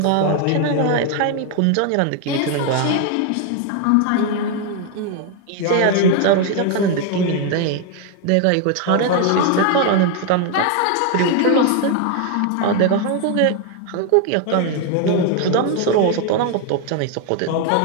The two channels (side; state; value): both; different; correlation 0.01